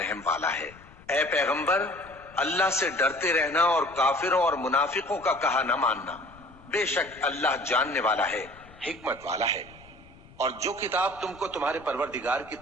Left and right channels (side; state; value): left; noise; rumble, 23 dB below the sound